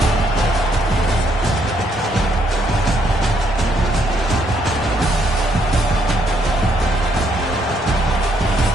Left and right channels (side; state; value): both; normal; correlation 0.72